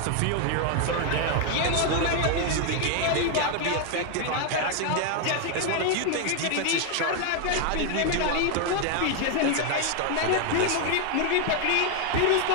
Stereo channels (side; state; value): both; different; correlation 0.01